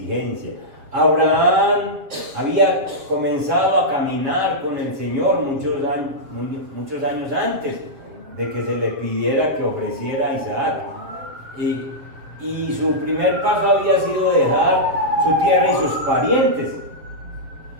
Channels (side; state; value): left; late; 7.4 ms